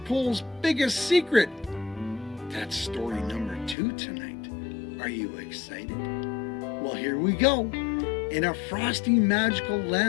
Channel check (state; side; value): drops out; right; at 3.8 s